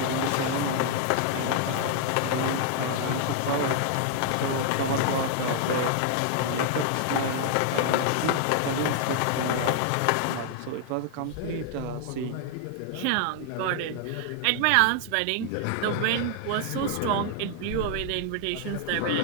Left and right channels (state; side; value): different; both; correlation 0.00